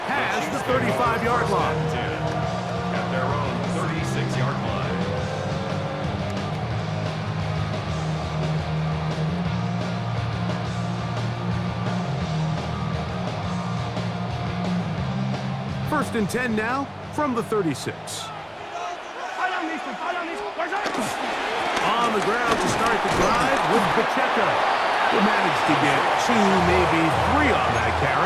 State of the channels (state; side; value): identical; both; correlation 1.00